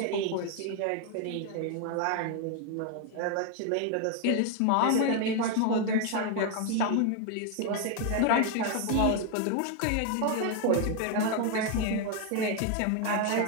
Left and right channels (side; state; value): both; different; correlation 0.01